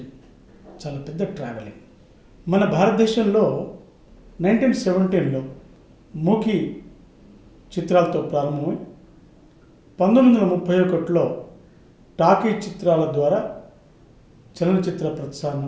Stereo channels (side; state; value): both; identical; correlation 1.00